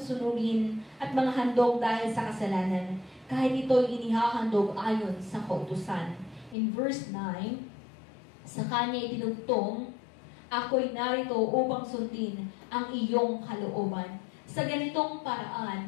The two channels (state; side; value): drops out; right; at 6.6 s